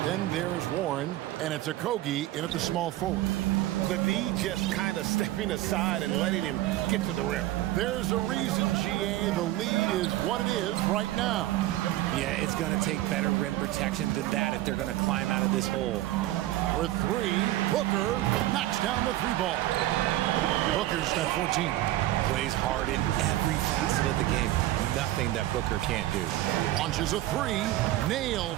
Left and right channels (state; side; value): quieter; left; 15.4 dB